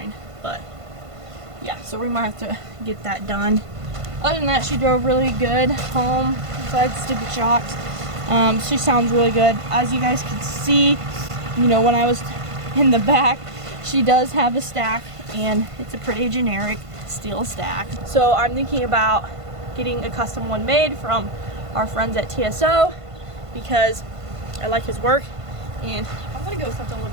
but yeah, so we might have to get that done. Other than that, she drove really good home, besides stupid shocks. She sounds really good. As you guys can see, you know, when I was in the back, she does have a stack, and it's a pretty generic steel stack. So I'm thinking about getting a custom one made from our friends at TSO, because I like his work, and I'm gonna go with something a little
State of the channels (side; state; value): left; late; 1.5 ms